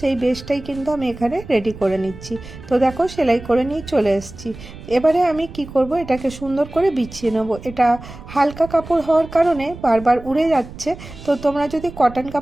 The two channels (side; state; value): right; noise; rumble, 15 dB below the sound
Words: বেসটাই কিন্তু আমি এখানে রেডি করে নিচ্ছি। তো দেখো সেলাই করে নিয়ে চলে এসেছি। এবারে আমি কি করব, এটাকে সুন্দর করে বিছিয়ে নেবো। এটা হালকা কাপড় হওয়ার কারণে বারবার উড়ে যাচ্ছে, তো তোমরা যদি কটন